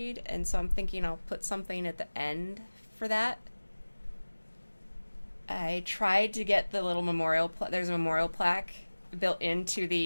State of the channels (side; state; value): both; inverted; correlation -1.00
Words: and so I'm thinking I'll put something at the end for that. I tried to get the little memorial... There's a memorial plaque built into